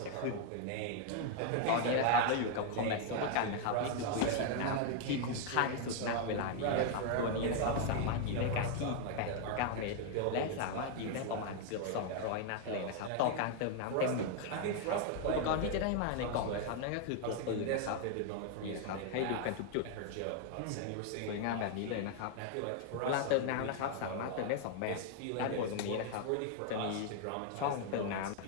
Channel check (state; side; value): different; both; correlation 0.00